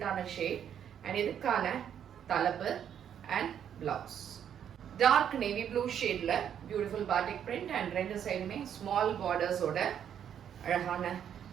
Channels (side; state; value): left; quieter; 9.0 dB